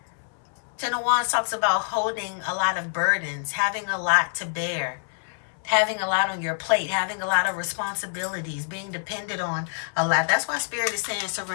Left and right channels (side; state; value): right; silent; 61 dB below the other